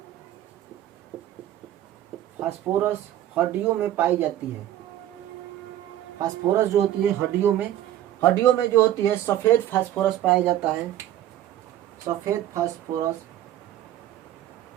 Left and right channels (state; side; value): quieter; left; 12.7 dB